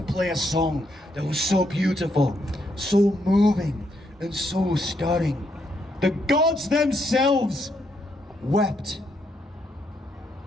play a song that was so beautiful, so moving, and so stirring. The gods themselves wept.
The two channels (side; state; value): both; normal; correlation 0.76